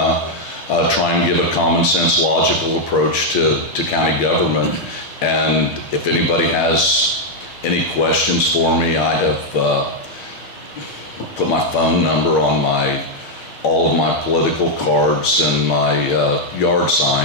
try and give a common sense, logical approach to county government. And if anybody has any questions for me, I have put my phone number on all of my political cards and my yard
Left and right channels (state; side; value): late; right; 6.4 ms